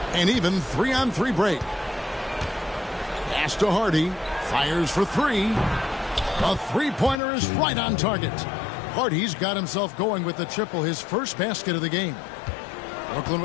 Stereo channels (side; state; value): right; drops out; at 7.2 s